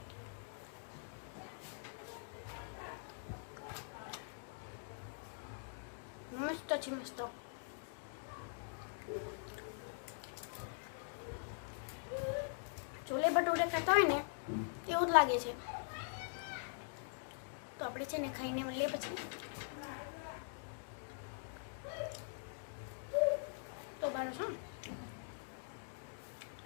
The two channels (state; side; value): silent; right; digital silence